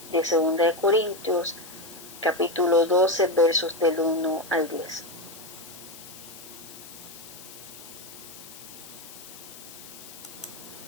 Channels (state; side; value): noise; left; hiss, 16 dB below the sound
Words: de segunda de Corintios, capítulo 12, versos del 1 al 10.